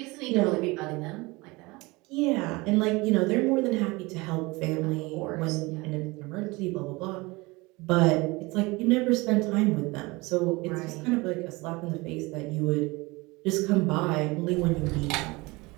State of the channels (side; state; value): left; quieter; 23.7 dB